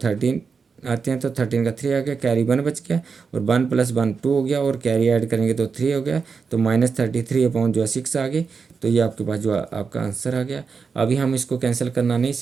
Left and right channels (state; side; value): quieter; left; 5.4 dB